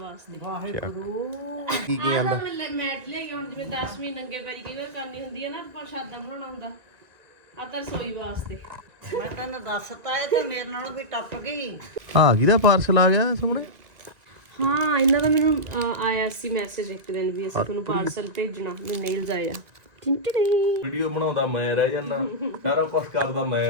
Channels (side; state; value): left; late; 1.9 ms